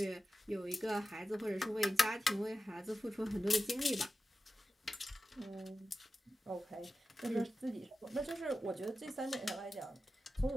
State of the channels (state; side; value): normal; both; correlation 0.93